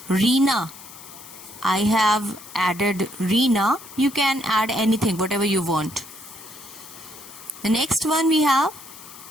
Reena. I have added Reena. You can add anything, whatever you want. The next one we have,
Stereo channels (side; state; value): left; noise; hiss, 17 dB below the sound